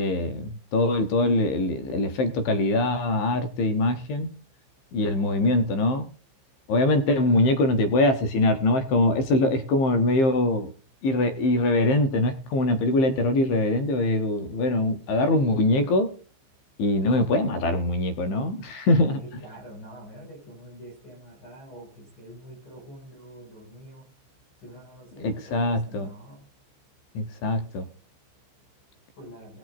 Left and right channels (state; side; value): late; right; 15 ms